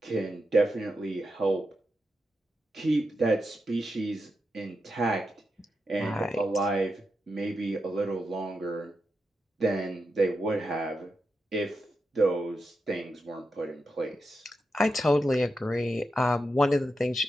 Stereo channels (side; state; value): both; normal; correlation 0.87